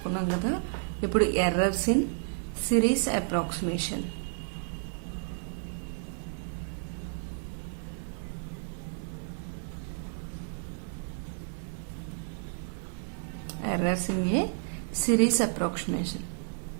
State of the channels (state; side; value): silent; left; 57 dB below the other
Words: కదా. ఇప్పుడు errors in series approximation. Errors in a series approximation.